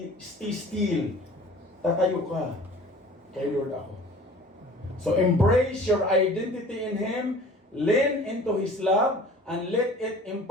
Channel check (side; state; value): both; normal; correlation 0.46